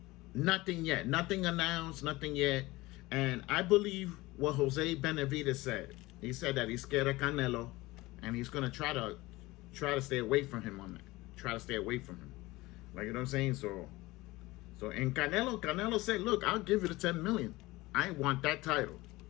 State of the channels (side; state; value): right; quieter; 20.3 dB